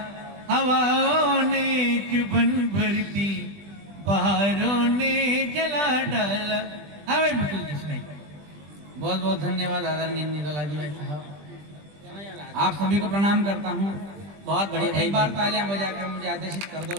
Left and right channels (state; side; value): late; left; 20 ms